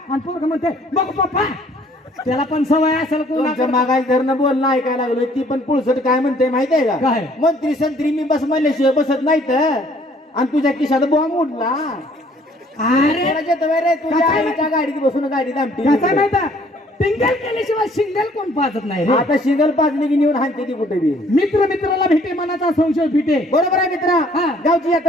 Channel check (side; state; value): both; normal; correlation 0.60